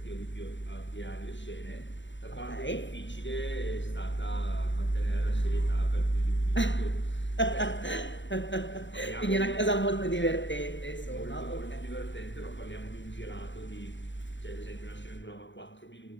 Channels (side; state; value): right; late; 0.54 ms